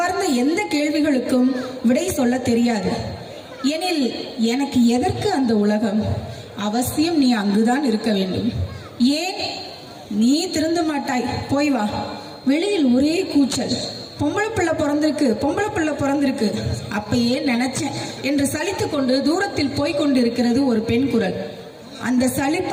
எந்த கேள்விகளுக்கும் விடை சொல்ல தெரியாது. எனில் எனக்கு எதற்கு அந்த உலகம்? அவசியம் நீ அங்குதான் இருக்க வேண்டும். ஏன்? நீ திருந்த மாட்டாய், போய் வா. வெளியில் ஒரே கூச்சல். பொம்பளை பிள்ளை பிறந்திருக்கு அப்பயே நினைச்சேன் என்று சலித்து கொண்டு தூரத்தில் போய்கொண்டிருக்கிறது ஒரு பெண் குரல். அந்த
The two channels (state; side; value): identical; both; correlation 1.00